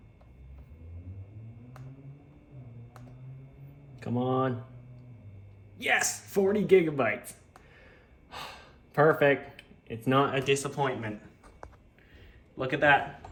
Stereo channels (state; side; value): identical; both; correlation 1.00